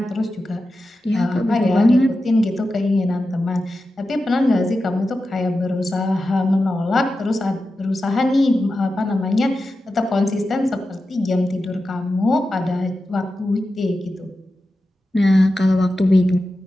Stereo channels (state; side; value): normal; both; correlation 0.92